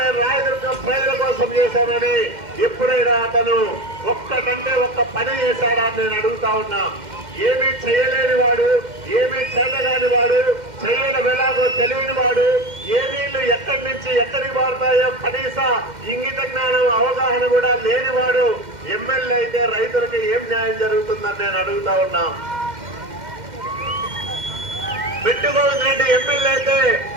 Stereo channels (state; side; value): late; left; 2.1 ms